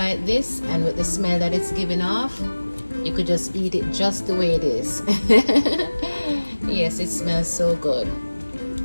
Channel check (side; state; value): both; inverted; correlation -1.00